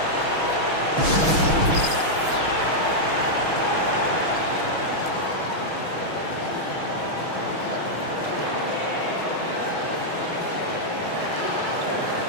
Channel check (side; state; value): left; late; 6.3 ms